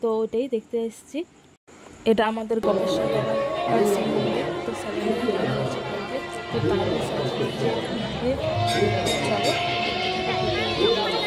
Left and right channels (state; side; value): identical; both; correlation 1.00